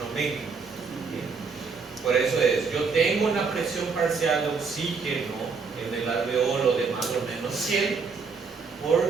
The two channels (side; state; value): left; quieter; 5.0 dB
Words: aumenta. Por eso es, yo tengo una presión parcial de oxígeno en el alveolo de más o menos 100,